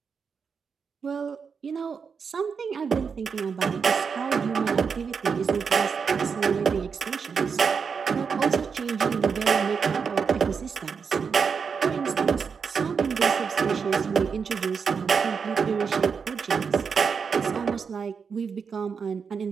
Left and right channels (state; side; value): quieter; left; 5.9 dB